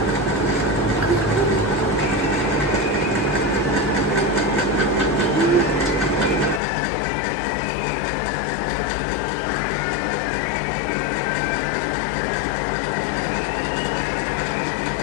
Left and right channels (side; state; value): right; drops out; at 6.6 s